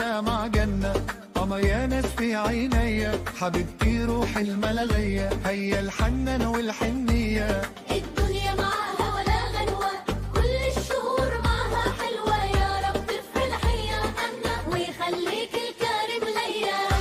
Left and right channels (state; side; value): identical; both; correlation 1.00